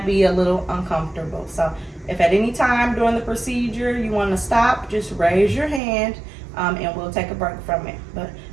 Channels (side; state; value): left; drops out; at 5.8 s